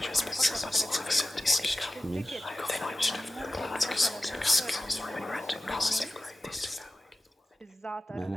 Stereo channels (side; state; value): both; normal; correlation 0.95